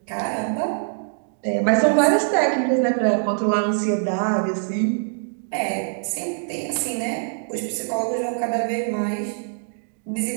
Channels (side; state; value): left; silent; 63 dB below the other